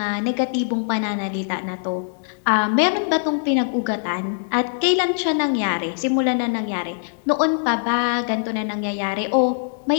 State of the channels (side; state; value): right; silent; digital silence